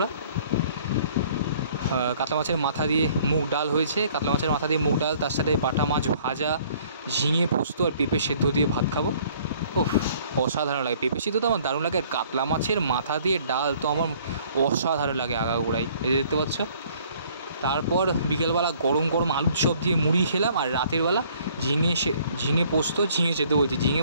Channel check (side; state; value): both; inverted; correlation -0.58